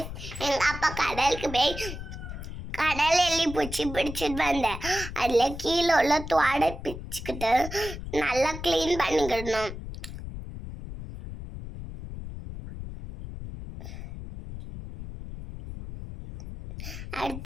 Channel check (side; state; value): left; noise; rumble, 9 dB below the sound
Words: எங்கள் அப்பா கடலுக்கு போய் கடல் எள்ளி பூச்சி பிடிச்சிட்டு வந்தேன். அதில் கீழே உள்ள துவாடை பிச்சுக்கிட்டு நல்லா க்ளீன் பண்ணிக்கிடணும்.